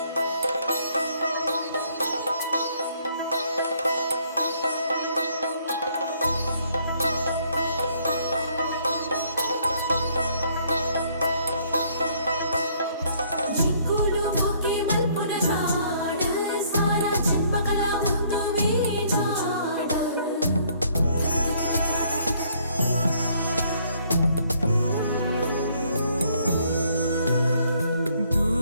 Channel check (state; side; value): inverted; both; correlation -0.65